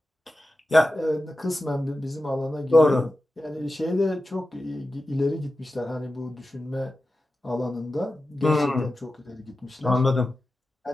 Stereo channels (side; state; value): both; normal; correlation 0.93